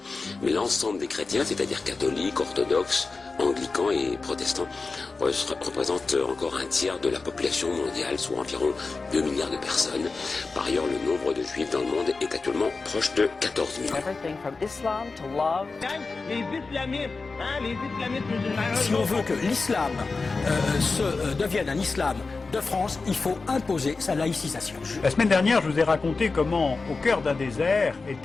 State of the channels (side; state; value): right; quieter; 4.0 dB